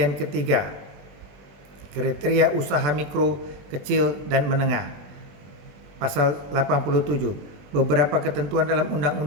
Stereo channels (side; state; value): left; late; 20 ms